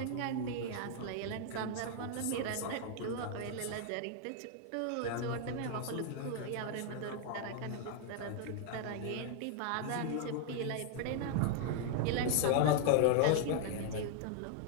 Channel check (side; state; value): both; different; correlation 0.00